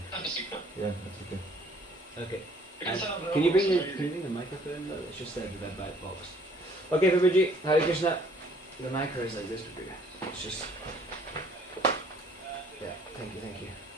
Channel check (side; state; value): both; normal; correlation 0.59